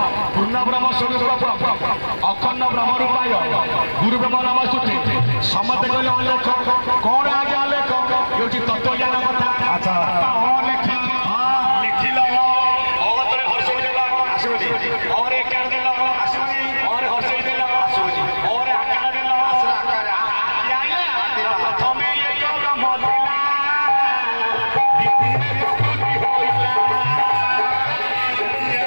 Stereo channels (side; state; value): both; inverted; correlation -1.00